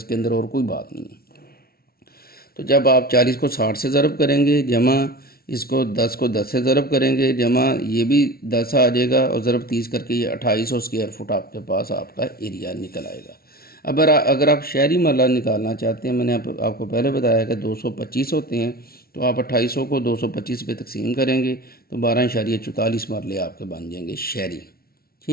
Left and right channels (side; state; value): right; late; 0.44 ms